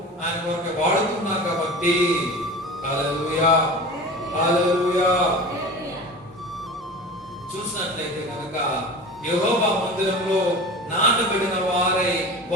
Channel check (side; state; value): both; normal; correlation 0.34